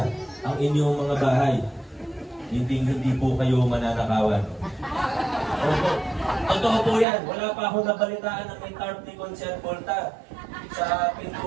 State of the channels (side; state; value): left; drops out; at 7.1 s